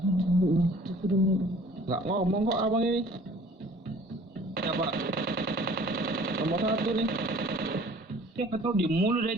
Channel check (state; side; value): normal; both; correlation 0.51